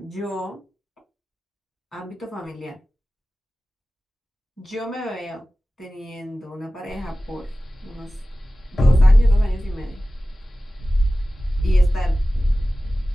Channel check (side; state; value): both; normal; correlation 0.96